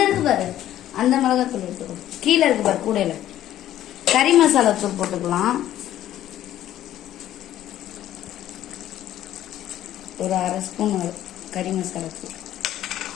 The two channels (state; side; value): quieter; right; 12.6 dB